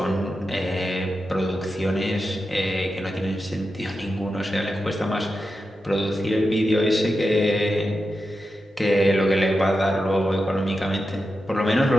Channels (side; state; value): both; normal; correlation 0.90